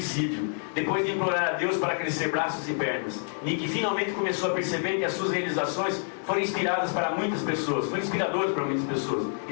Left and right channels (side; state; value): right; silent; 60 dB below the other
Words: depois de implorar a Deus para crescer braços e pernas. Nick finalmente começou a perceber que as suas realizações foram inspiradas para muitas pessoas, foram inspiradoras para muitas pessoas,